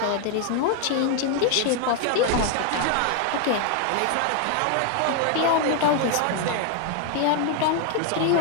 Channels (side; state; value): both; different; correlation 0.01